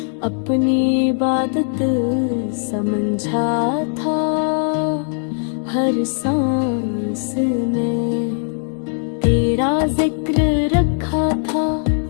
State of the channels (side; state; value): right; silent; 59 dB below the other